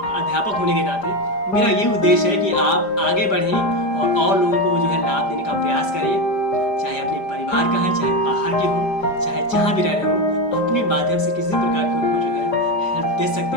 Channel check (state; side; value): late; right; 5.0 ms